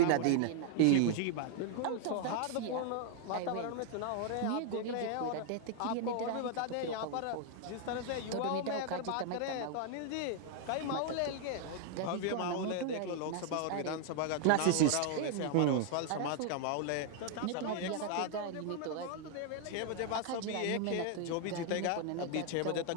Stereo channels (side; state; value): both; different; correlation 0.00